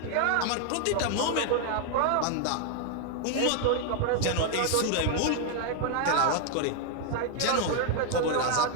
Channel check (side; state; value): both; different; correlation 0.00